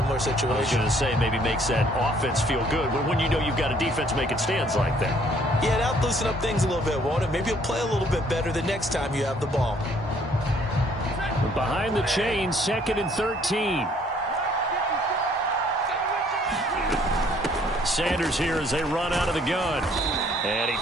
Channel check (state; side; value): normal; both; correlation 0.62